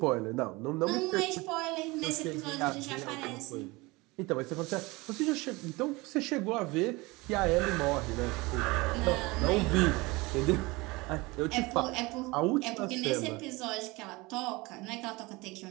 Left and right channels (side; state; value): left; quieter; 23.3 dB